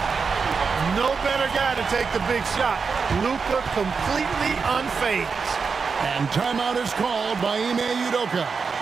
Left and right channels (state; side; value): quieter; left; 5.3 dB